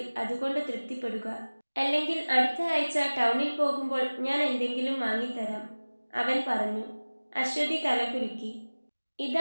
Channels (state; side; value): inverted; both; correlation -1.00